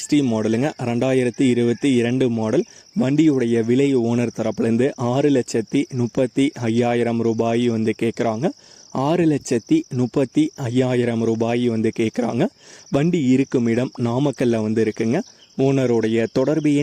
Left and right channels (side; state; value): both; identical; correlation 1.00